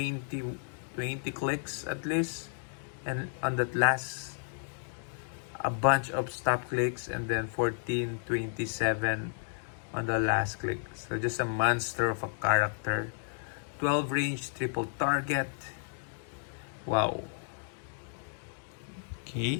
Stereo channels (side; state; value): right; silent; digital silence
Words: clicks at least. And on that last, a bunch of stop clicks, and then 14, 27 on the last click. So just a monster of a character. 12 range, triple target. Wow.